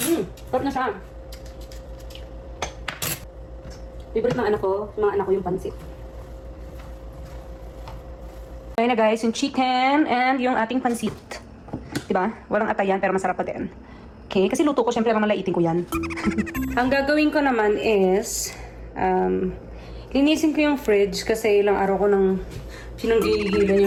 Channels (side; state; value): both; identical; correlation 1.00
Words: Sarap na siya. Favorite ng anak ko, mga anak ko yung pansit. Ayan na guys, yung chicken and yung ating pansit. Diba? Walang atayan pero masarap pa din. Okay, kasi luto ko, syempre mamalaitin ko yan. Ang gagawin ko naman is, linisin ko yung fridge kasi ilang araw ko nang